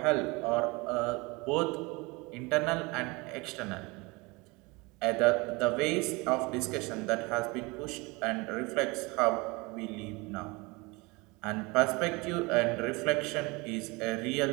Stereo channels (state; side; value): quieter; left; 25.7 dB